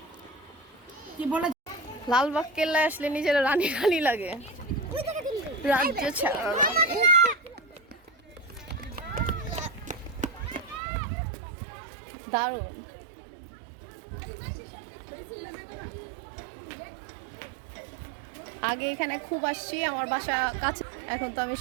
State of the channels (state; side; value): drops out; left; at 10.8 s